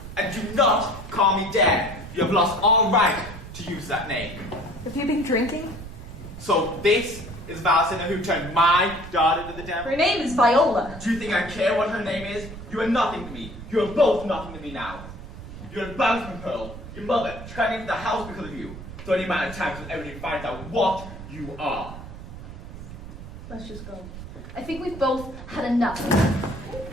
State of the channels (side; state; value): right; noise; rumble, 12 dB below the sound